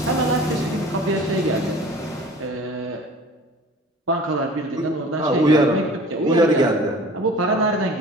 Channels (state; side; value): normal; both; correlation 0.44